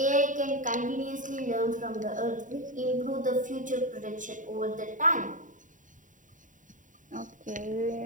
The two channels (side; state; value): left; late; 0.37 ms